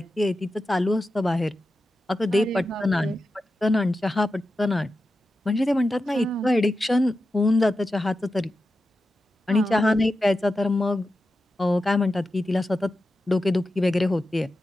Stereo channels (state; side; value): normal; both; correlation 0.91